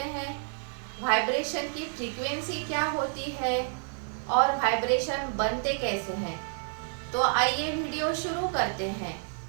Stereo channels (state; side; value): silent; left; 58 dB below the other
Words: हैं, वाइब्रेशन की फ्रीक्वेंसी क्या होती है और वाइब्रेशन बनते कैसे हैं। तो आइए वीडियो शुरू करते हैं।